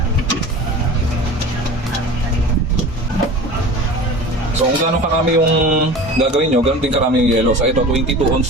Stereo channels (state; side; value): normal; both; correlation 0.36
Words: So kung gaano karami yung gagawin nyo, ganoon din karami yung yellow. So ito, 22